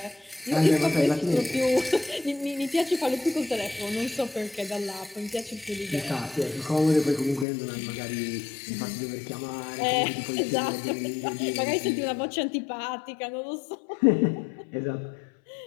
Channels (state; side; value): drops out; right; at 7.5 s